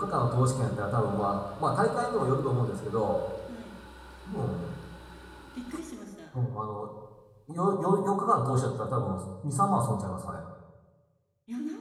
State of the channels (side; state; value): both; identical; correlation 1.00